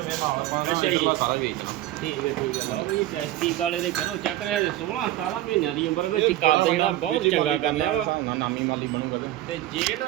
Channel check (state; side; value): quieter; left; 14.6 dB